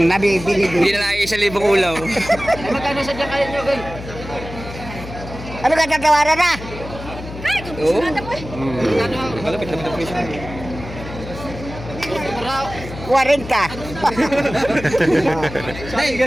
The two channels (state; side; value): noise; left; hum, 12 dB below the sound